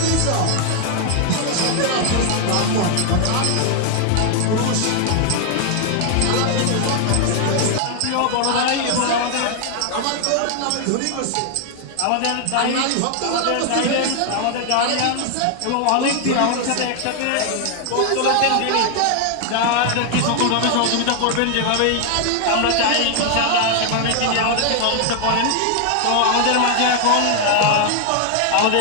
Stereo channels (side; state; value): both; different; correlation 0.00